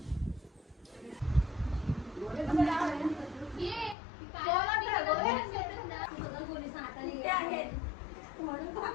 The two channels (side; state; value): right; drops out; at 4.0 s